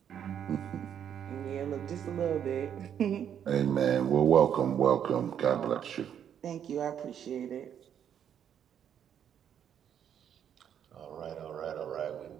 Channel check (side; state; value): left; quieter; 9.0 dB